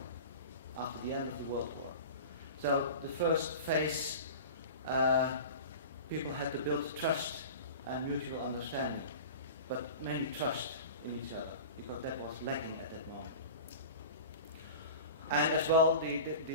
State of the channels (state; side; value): inverted; both; correlation -0.34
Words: after the end of the World War. So the first phase, people had to build trust and mutual understanding, but mainly trust in each other, because that was lacking at that moment. And as well,